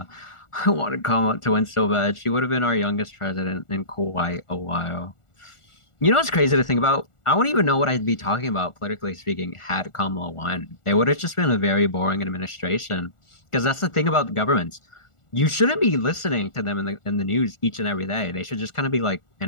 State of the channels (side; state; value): right; late; 1.4 ms